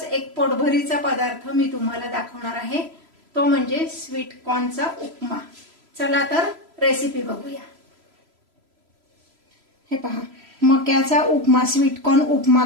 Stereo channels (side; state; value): left; late; 3.0 ms